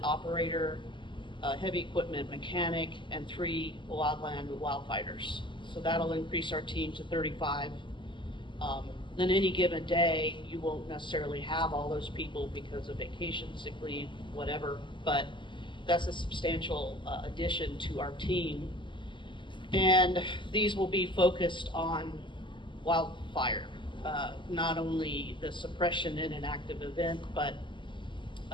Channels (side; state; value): right; late; 0.24 ms